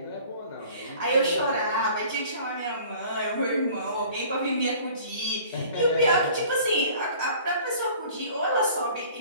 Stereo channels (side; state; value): both; inverted; correlation -0.49